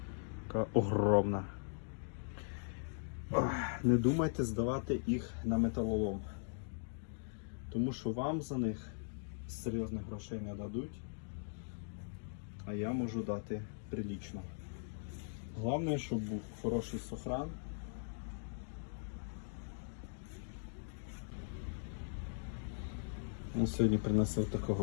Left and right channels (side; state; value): right; silent; digital silence